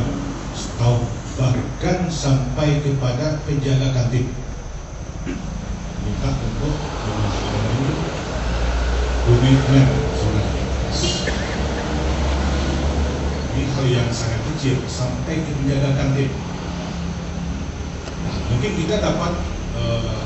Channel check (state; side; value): identical; both; correlation 1.00